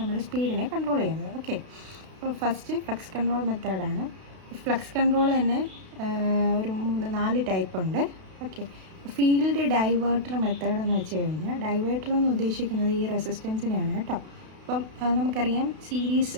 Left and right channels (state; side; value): late; left; 32 ms